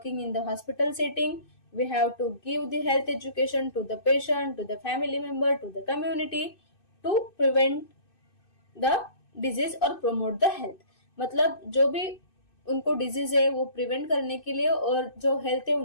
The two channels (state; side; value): late; right; 2.6 ms